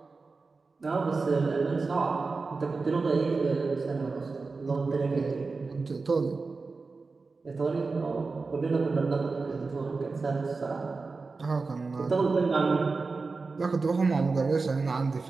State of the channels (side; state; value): left; quieter; 4.1 dB